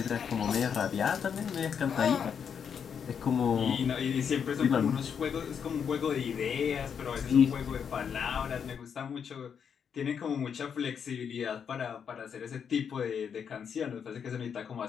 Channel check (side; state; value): right; quieter; 7.3 dB